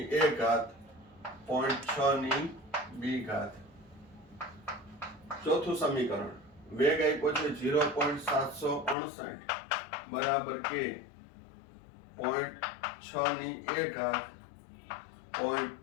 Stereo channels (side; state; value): right; drops out; at 9.0 s